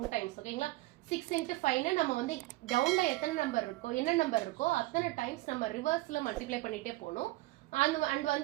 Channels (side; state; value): left; quieter; 19.6 dB